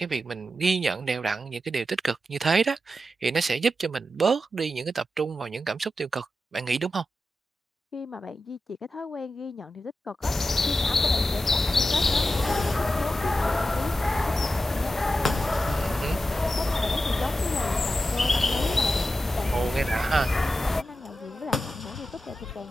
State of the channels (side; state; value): both; normal; correlation 0.91